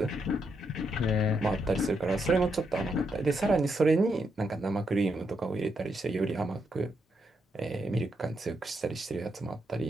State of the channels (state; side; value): normal; both; correlation 0.80